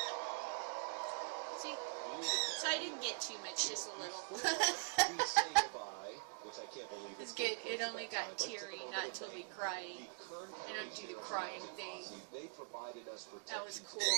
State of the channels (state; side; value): silent; left; digital silence